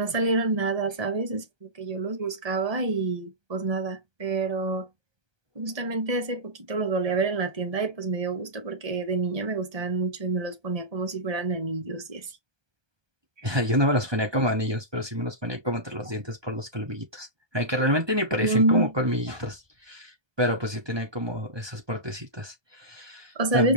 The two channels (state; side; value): late; left; 1.2 ms